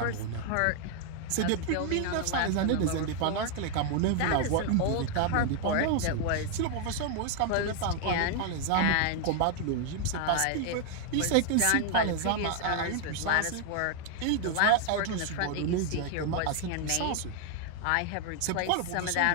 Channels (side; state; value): both; different; correlation 0.00